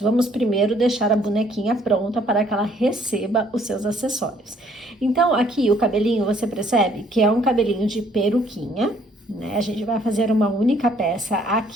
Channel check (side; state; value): both; normal; correlation 0.63